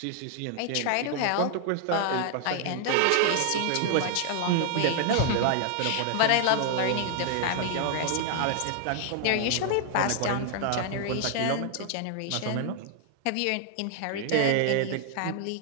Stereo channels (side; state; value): both; different; correlation 0.00